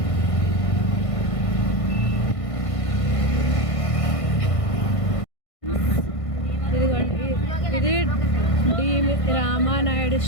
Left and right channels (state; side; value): late; right; 1.5 ms